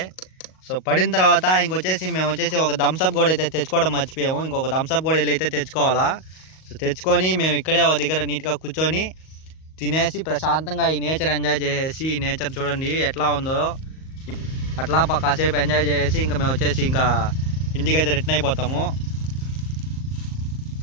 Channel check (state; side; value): late; right; 38 ms